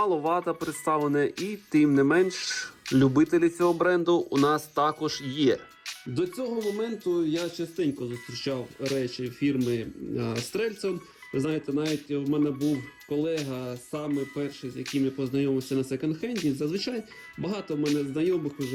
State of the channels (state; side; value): identical; both; correlation 1.00